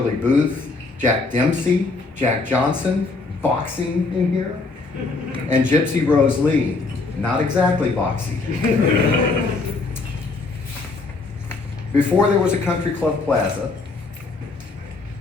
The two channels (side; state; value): right; quieter; 3.7 dB